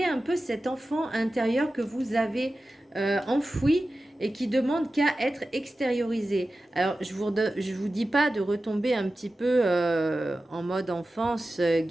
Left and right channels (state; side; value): normal; both; correlation 0.94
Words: un peu cet enfant intérieur que vous avez enfoui et qui demande qu'à être extériorisé. Alors je vous dis pas de retomber un petit peu en mode enfance,